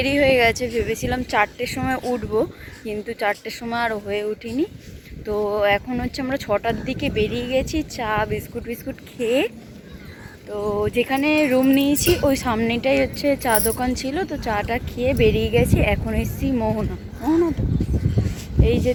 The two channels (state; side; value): identical; both; correlation 1.00